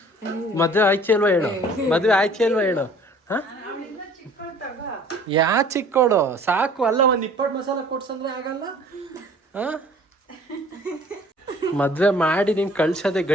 ಮದ್ವೆ ಆಯ್ಕೆ ಅಲ್ವಾ ಹೇಳು, ಮದ್ವೆ ಆಯ್ಕೆ ಅಲ್ವಾ ಹೇಳು. ಯಾ ಚಿಕ್ಕೋಳು ಸಾಕು ಅಲ್ಲ, ಒಂದ್ 20 ಮಸಾಲ ಕೊಡ್ಸಂದ್ರೆ ಆಗಲ್ಲ. ಮದ್ವೆ ಮಾಡಿ ನೀನ್ ಕಳ್ಸದೆ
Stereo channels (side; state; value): both; normal; correlation 0.51